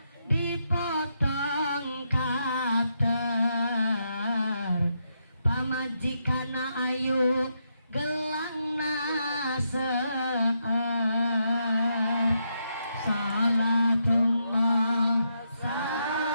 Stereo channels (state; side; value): inverted; both; correlation -0.81